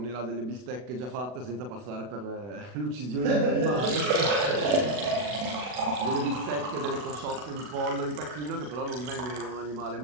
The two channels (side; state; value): left; late; 40 ms